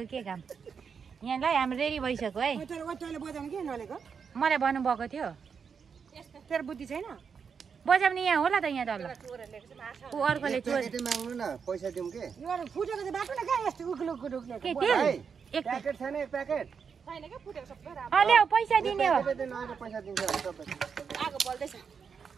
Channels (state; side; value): quieter; left; 6.3 dB